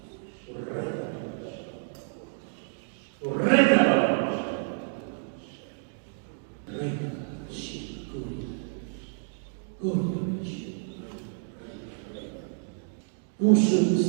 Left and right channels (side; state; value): left; silent; digital silence